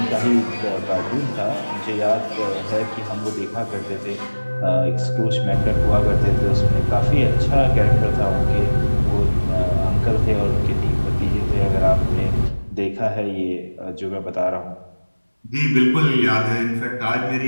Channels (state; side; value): inverted; both; correlation -1.00